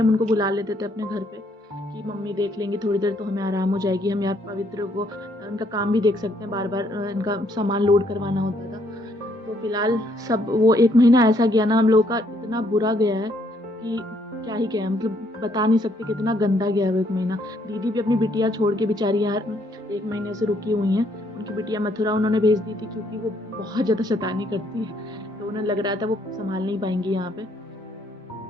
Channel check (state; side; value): normal; both; correlation 0.69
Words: हम उनको बुला लेते थे अपने घर पे कि मम्मी देख लेंगी थोड़ी देर, तो हमें आराम हो जाएगी। हम यहाँ पवित्र को उनका काम भी देख सकते हैं, बार बार इनका सामान लोड करवाना होता था। तो फिलहाल सब वो 1 महीना ऐसा गया ना हम लोगों का, इतना बुरा गया है कि क्या ही कहें। मतलब बता नहीं सकते कितना गंदा गया है वो 1 महीना। दीदी भी अपनी बिटिया छोड़ के बेचारी यार 1 महीने से रुकी हुई हैं। उनकी बिटिया मथुरा उन्होंने भेज दी थी क्योंकि वो बहुत ज़्यादा शैतानी करती है, तो उन्हें लग रहा था वो संभाल नहीं पाएंगी यहाँ पे।